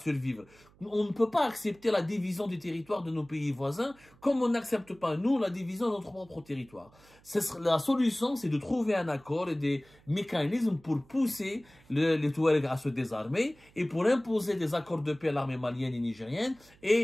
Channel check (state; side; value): noise; right; hum, 28 dB below the sound